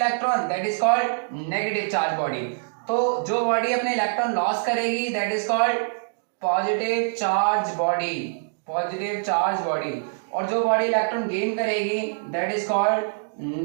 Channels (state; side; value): silent; left; digital silence